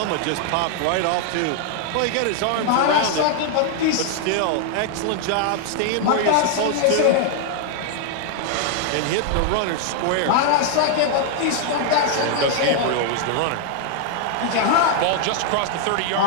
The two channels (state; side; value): different; both; correlation 0.00